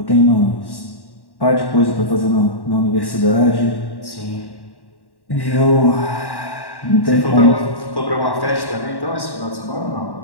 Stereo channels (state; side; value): late; right; 1.1 ms